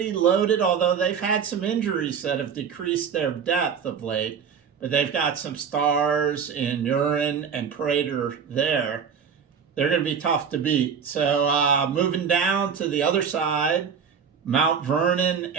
loaded, although they've had some injuries that have decreased their depth of late. But they've got some stars in Urin and Prater there. They're going to be tough to beat. So moving down to the other side, Mount Vernon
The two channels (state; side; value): quieter; left; 6.9 dB